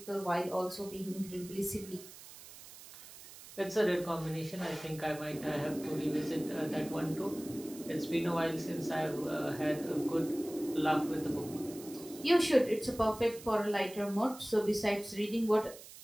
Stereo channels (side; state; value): right; noise; hiss, 17 dB below the sound